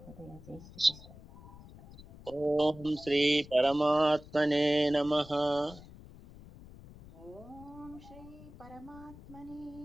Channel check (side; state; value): left; noise; rumble, 18 dB below the sound